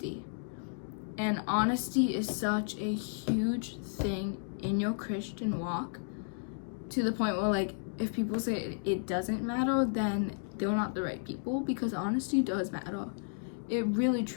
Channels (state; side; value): silent; right; digital silence